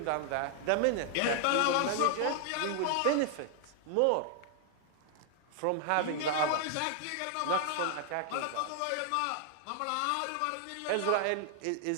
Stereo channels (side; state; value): both; different; correlation 0.00